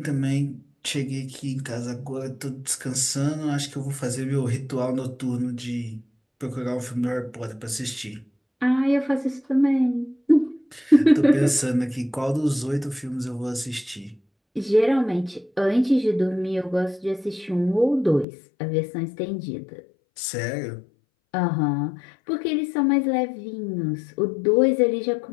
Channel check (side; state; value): right; drops out; at 18.2 s